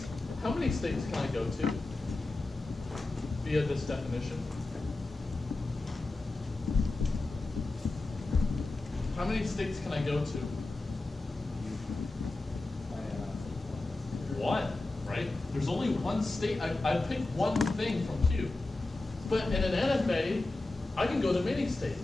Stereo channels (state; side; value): quieter; right; 3.1 dB